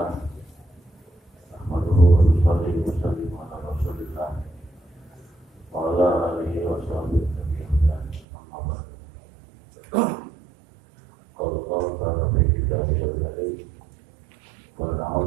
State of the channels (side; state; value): left; drops out; at 8.2 s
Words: Nahmaduhu wa nusalli wa nusallimu ala Rasulillah wa ala alihi wa sahbihi ajma'in. Amma ba'd. Qala Allah ta'ala fi kitabihil karim.